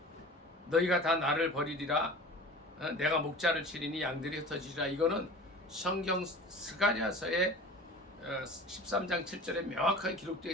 너희가 다 나를 버리리라. 내가 목자를 치리니 양들이 흩어지리라. 이거는 성경 스가랴서의 13장 7절에 명확하게 기록되어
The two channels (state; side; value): normal; both; correlation 0.39